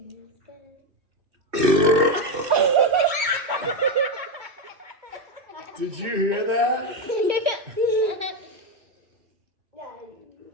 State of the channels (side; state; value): left; late; 2.6 ms